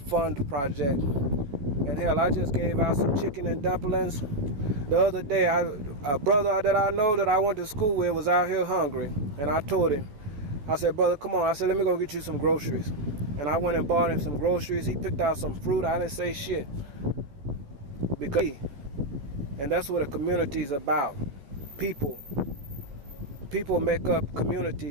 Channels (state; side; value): late; left; 14 ms